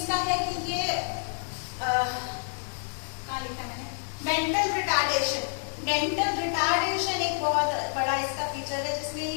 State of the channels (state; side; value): silent; right; digital silence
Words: है कि ये क्या लिखा मैंने, मेंटल रिटार्डेशन, मेंटल रिटार्डेशन एक बहुत बड़ा इसका फीचर है, जिसमें